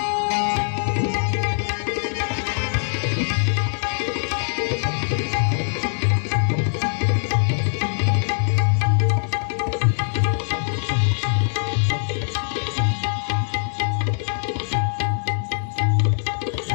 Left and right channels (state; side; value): silent; right; digital silence